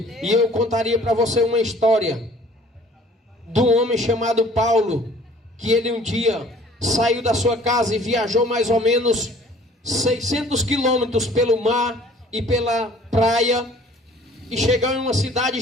E eu contaria para você uma história de um homem chamado Paulo, que ele um dia saiu da sua casa e viajou mais ou menos 600 quilômetros pelo mar e pela praia, e chegou em uma cidade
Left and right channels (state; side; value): normal; both; correlation 0.53